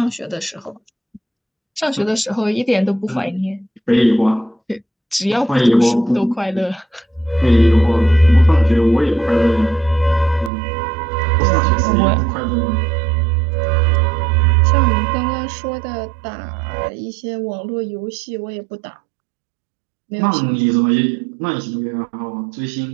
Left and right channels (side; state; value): left; drops out; at 10.5 s